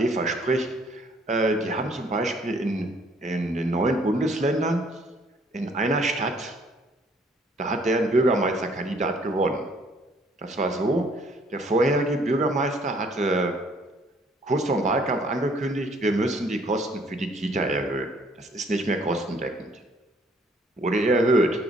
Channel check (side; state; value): both; normal; correlation 0.62